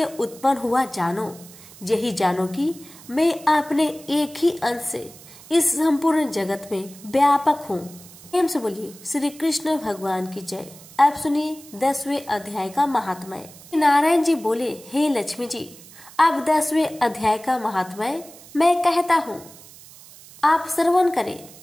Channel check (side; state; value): right; noise; hiss, 20 dB below the sound